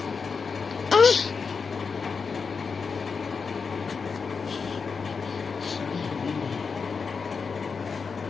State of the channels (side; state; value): right; quieter; 5.3 dB